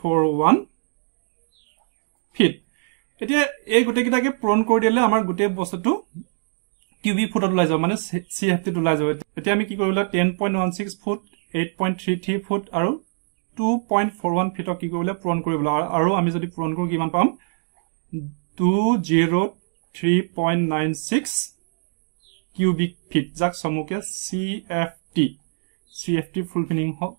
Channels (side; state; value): left; silent; digital silence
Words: ফিট। এতিয়া এই গোটেইকেইটাকে পূৰণ কৰি দিলে আমাৰ গোটেই বস্তুটো কিউবিক ফুটত ওলাই যাব, মানে CFT ওলাই যাব। এতিয়া আমি কি কৰিব লাগিব? 10.16 ফুট, 8.33 ফুট আৰু 2.41 ফিটক কি কৰিব লাগিব? পূৰণ কৰিব লাগিব। আৰু আমি যদি পূৰণ কৰো কিমান পাম? 203.96 কিউবিক ফিট, যাক চমুকে CFT ফুল